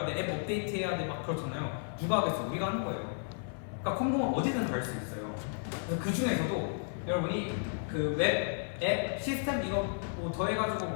돼, 앱 업데이트해야 돼 막 그렇잖아요. 누가 하겠어? 우리가 하는 거예요. 그러니까 컴공은 어디든 갈 수 있어요. 그래서 그 중에서도 여러분이 웹, 앱, 시스템 이거 뭐 더해가지고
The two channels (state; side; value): silent; right; 56 dB below the other